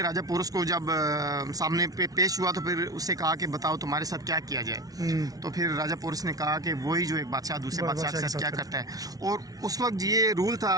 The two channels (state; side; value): late; left; 0.18 ms